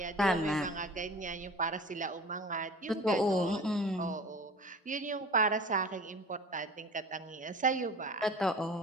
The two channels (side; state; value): both; normal; correlation 0.39